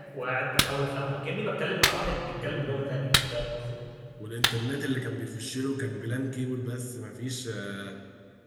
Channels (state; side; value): identical; both; correlation 1.00